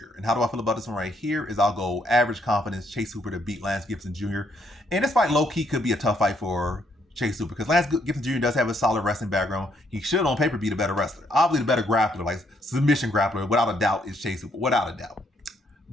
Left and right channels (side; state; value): both; normal; correlation 0.72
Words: And how do I feel about this one right here is I'll go average confidence Chase Hooper to beat Lance Gibson Jr. And this fight low-key could be a tough fight for Chase Hooper because Lance Gibson Jr. does have a solid wrestling background. He should on paper be the better wrestler. Obviously the better grappler, like submission grappler, without a doubt, is Chase Hooper, without a doubt.